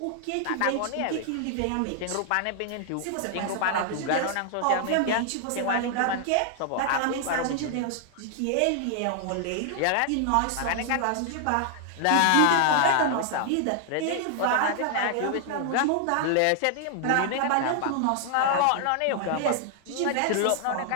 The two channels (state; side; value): different; both; correlation 0.00